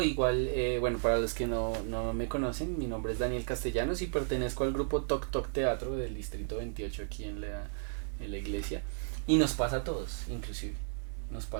igual, bueno, para los que no me conocen, mi nombre es Daniel Castellanos y pertenezco al grupo Toc Toc Teatro del Distrito 28 aquí en la iglesia. Y nos pasa a todos, inclusive, nos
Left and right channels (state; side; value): silent; left; 55 dB below the other